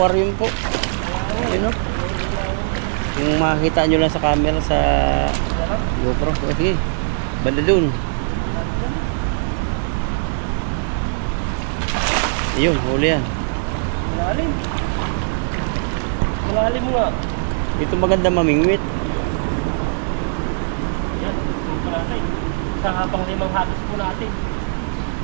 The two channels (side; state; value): left; silent; digital silence